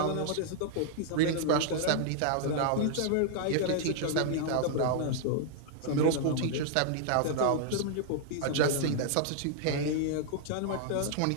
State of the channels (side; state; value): both; different; correlation -0.01